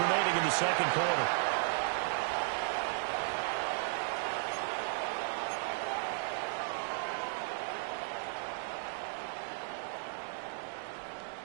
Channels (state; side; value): silent; left; digital silence